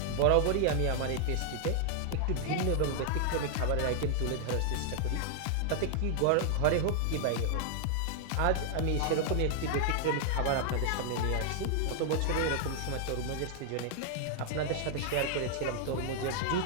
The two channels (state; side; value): different; both; correlation 0.00